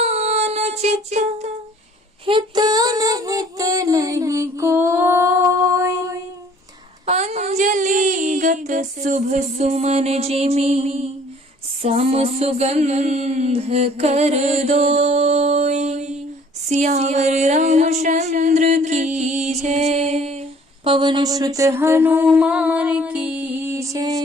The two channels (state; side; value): normal; both; correlation 0.55